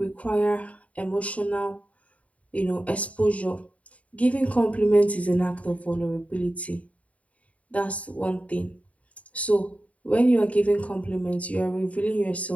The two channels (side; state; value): right; late; 0.067 ms